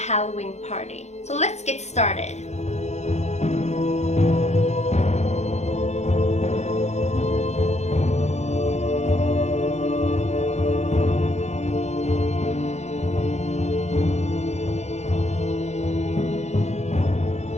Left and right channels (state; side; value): late; right; 0.32 ms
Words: party. So let's get started.